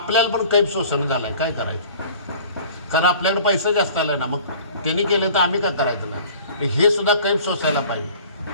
पण कैफ शोषण झालं आहे. काय करायचं? कारण आपल्याकडे पैसा जास्त आला आहे ना. मग त्यांनी केलं तर आम्ही काय करायचं नाही? हे सुद्धा कैफ सोसायला पाहिजे.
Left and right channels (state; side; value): inverted; both; correlation -0.46